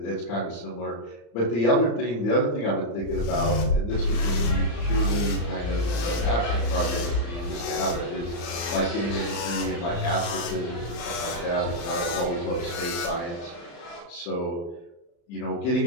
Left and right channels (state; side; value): late; right; 35 ms